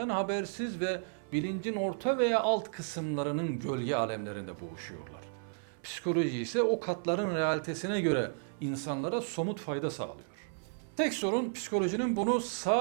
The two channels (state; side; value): silent; left; 56 dB below the other